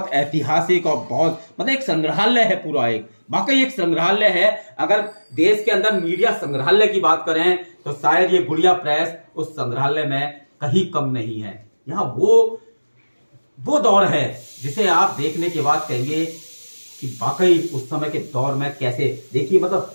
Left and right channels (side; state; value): both; inverted; correlation -1.00